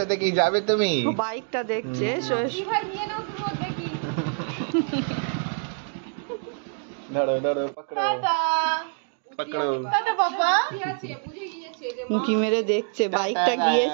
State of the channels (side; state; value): left; silent; 56 dB below the other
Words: কি যাবে তুমি ও বাইকটা দেখছে, এসো এসো। ভাই নিয়ে নাও তুমি, দেখি ধরো ধরো পকড়ো টাটা পকড়ো টাটা বাবা। কি আছে বুঝে গিয়েছে যে উঁকি মেরে দেখছে, বাইকটা